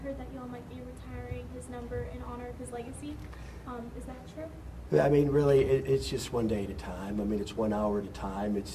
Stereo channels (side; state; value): both; identical; correlation 1.00